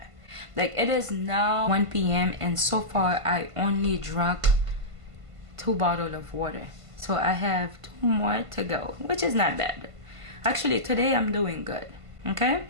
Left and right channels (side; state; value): left; late; 1.5 ms